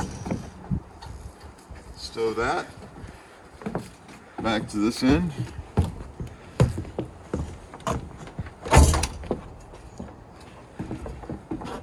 stow that, back to this end,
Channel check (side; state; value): both; identical; correlation 1.00